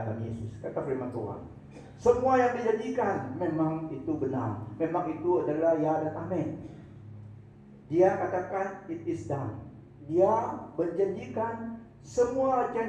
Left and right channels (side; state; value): both; identical; correlation 1.00